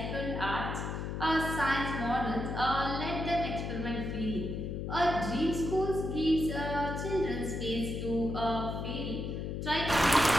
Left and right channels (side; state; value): left; noise; hum, 4 dB below the sound